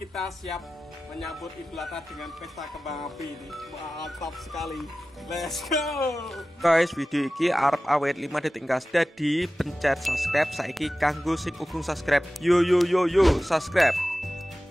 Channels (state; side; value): normal; both; correlation 0.95